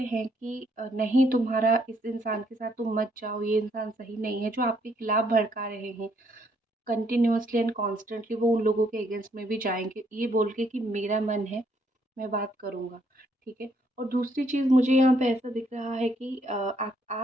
हैं कि नहीं, तुम्हारा इस इंसान के साथ तुम मत जाओ, ये इंसान सही नहीं है, जो आपके खिलाफ भड़का रहे हैं कंटिन्यूअसली एंड कॉन्स्टेंटली, वो उन लोगों के अगेंस्ट में भी जाएँगे, ये बोल के कि मेरा मन है, मैं बात करूँगा, ठीक है? और दूसरी चीज़ मुझे यहाँ पे ऐसा दिख रहा है कि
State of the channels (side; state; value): both; normal; correlation 0.70